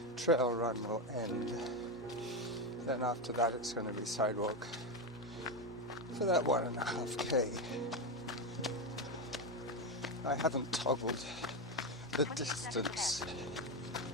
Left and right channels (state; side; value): normal; both; correlation 0.13